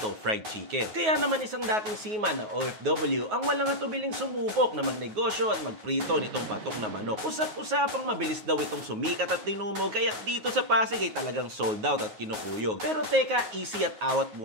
Fried Chicken. Kaya naman isang dating seaman na OFW ang walang atubiling sumubok na magnegosyo at magprito nitong patok na manok. Usap-usapang mabilis daw itong sumikat at tinumog kaya dito sa Pasig ay talagang sold out at kinukuyog. Pero teka, easy at awat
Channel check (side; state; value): left; late; 9.4 ms